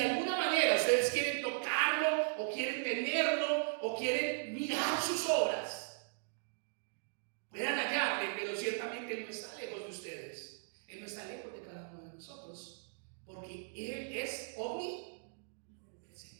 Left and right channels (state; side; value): silent; left; digital silence